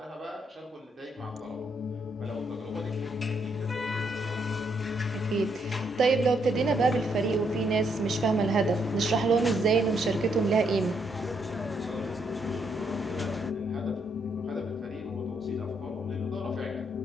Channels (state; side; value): normal; both; correlation 0.75